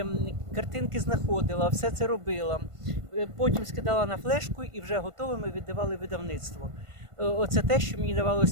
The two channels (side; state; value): left; late; 1.5 ms